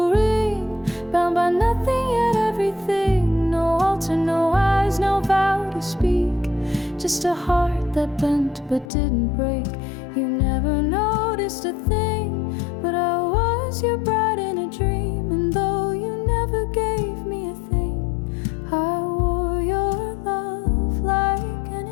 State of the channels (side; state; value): right; drops out; at 8.8 s